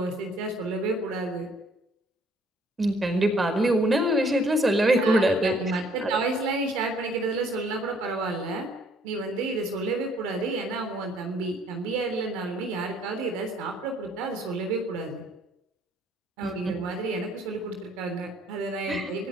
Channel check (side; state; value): both; normal; correlation 0.62